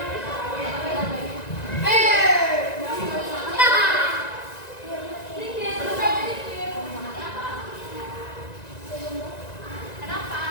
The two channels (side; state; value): right; late; 1.9 ms